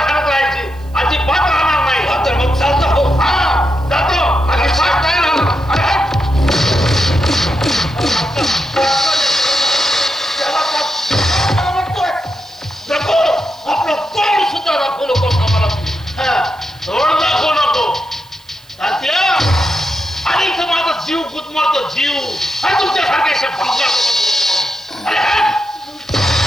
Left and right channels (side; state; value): right; noise; hiss, 28 dB below the sound